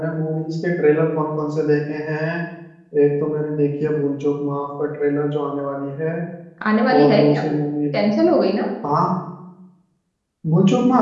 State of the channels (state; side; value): identical; both; correlation 1.00